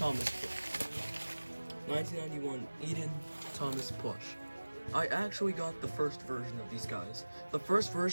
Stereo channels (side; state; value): both; inverted; correlation -1.00